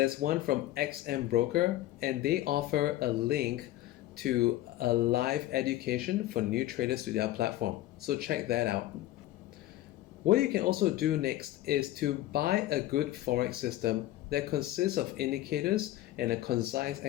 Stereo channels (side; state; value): right; quieter; 15.0 dB